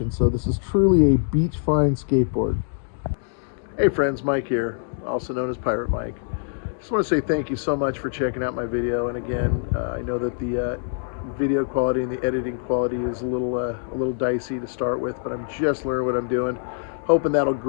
So this is truly a beach fine skateboard. Hey friends, Mike here, also known as Pirate Mike. Just want to say thank you so much for checking out my video. And again, I know that the video quality and the editing quality is a little dicey to start with, but I'm just learning what I'm doing. Hoping that'll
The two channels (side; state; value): right; silent; digital silence